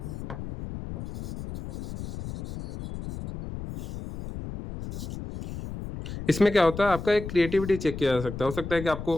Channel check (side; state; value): left; noise; rumble, 9 dB below the sound